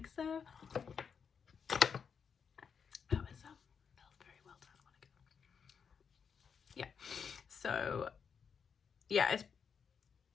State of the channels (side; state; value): right; quieter; 6.5 dB